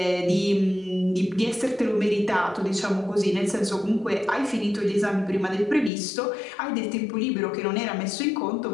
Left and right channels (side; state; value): right; drops out; at 5.9 s